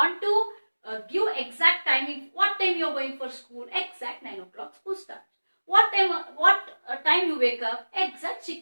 to give exact timing. What time you are going for school? Exact 9 o'clock school starts. What time you wake up? Exact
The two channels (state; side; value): inverted; both; correlation -1.00